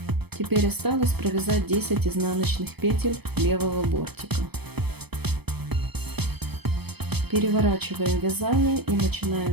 Теперь осталось провязать 10 изнаночных петель левого бортика. Переворачиваем вязание и начинаем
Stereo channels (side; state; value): left; late; 0.97 ms